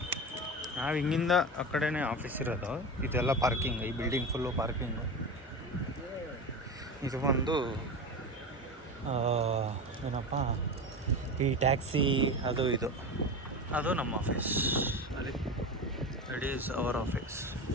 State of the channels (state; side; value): normal; both; correlation 0.25